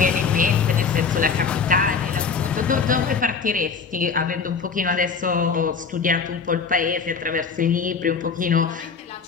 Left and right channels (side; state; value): right; quieter; 5.5 dB